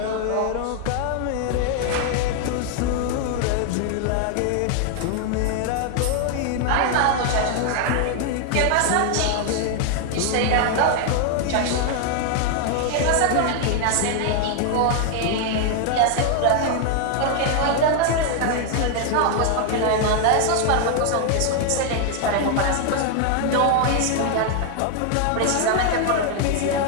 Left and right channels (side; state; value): both; different; correlation 0.00